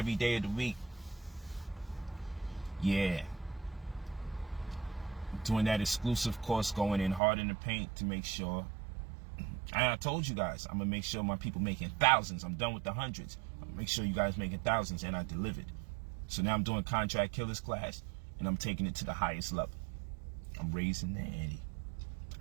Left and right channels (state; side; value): drops out; left; at 7.2 s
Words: day of the week. Yeah. Doing that exclusive course, going in hard in the paint to make sure. And I told you guys, I'm going to make sure my people making thousands. I'm done with the hundreds. I'm going to make sure you guys making thousands, and I delivered. So now I'm doing Contract Killers class, and I'm taking it to the highest level. I'm raising the ante.